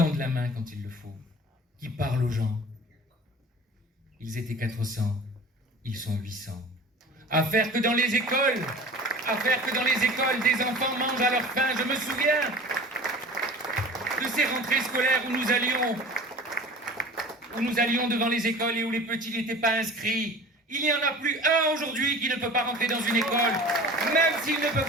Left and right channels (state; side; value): normal; both; correlation 0.40